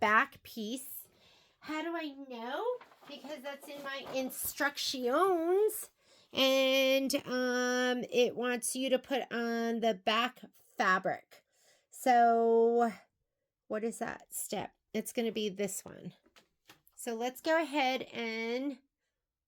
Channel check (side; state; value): both; identical; correlation 1.00